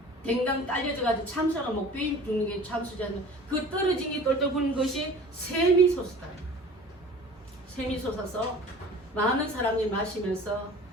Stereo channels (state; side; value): normal; both; correlation 0.43